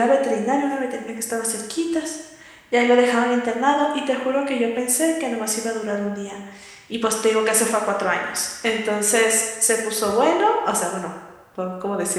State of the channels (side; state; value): both; identical; correlation 1.00